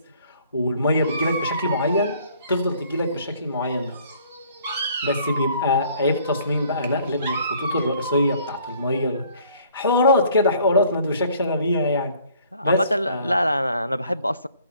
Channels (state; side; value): inverted; both; correlation -0.58